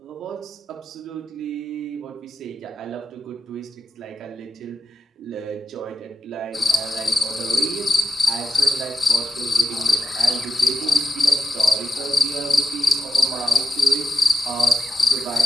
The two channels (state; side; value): normal; both; correlation 0.89